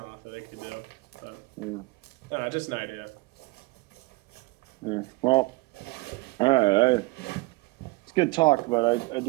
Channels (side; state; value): left; quieter; 22.8 dB